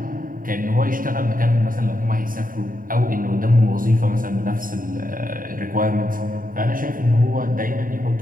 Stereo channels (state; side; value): late; left; 0.40 ms